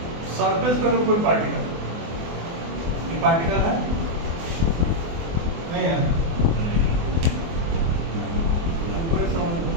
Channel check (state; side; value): late; left; 24 ms